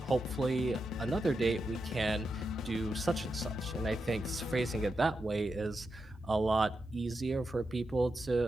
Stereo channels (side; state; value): both; normal; correlation 0.87